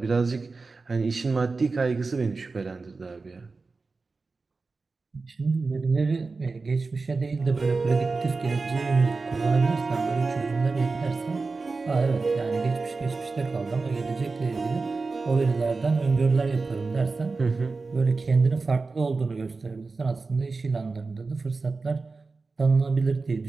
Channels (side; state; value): left; quieter; 4.0 dB